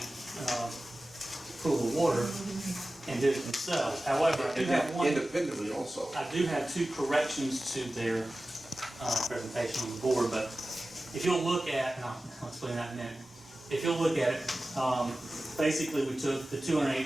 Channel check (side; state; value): both; normal; correlation 0.96